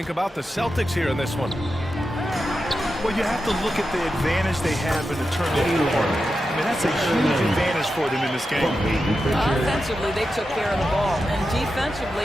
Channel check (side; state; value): both; normal; correlation 0.89